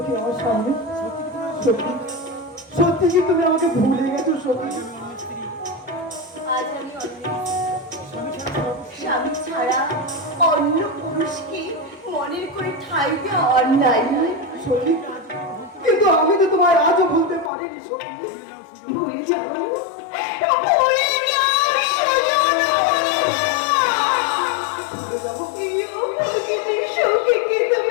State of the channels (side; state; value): right; drops out; at 17.5 s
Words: আমার সামনে সত্যি সত্যি কি তুমি আমাকে ভুলে গেছো সত্যি আজ আমি স্বামী ছাড়া অন্য পুরুষকে মনের করে ঠাই দেওয়া অন্যায়। সখী কিন্তু আমি তো তোমায় আজও ভুলতে পারিনি সখী ভুলে যাও, ভুলে যাও সুজন, ভুলে যাবো সখীকে